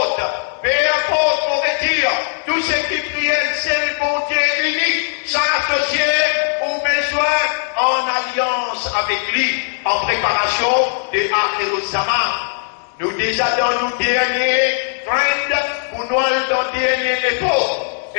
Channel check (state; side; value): silent; right; digital silence